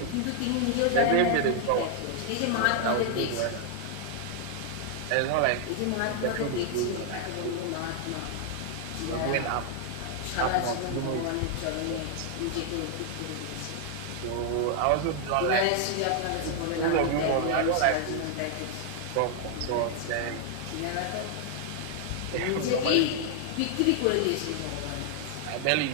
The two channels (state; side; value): different; both; correlation 0.00